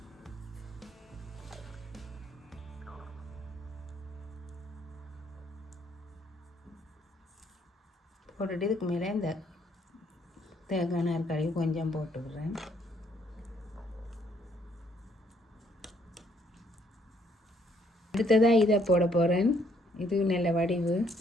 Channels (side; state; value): both; normal; correlation 0.67